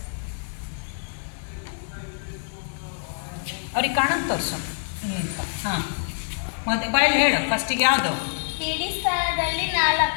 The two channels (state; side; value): silent; right; 61 dB below the other